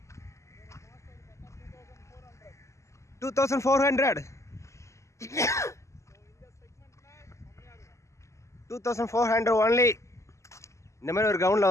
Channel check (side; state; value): right; late; 0.14 ms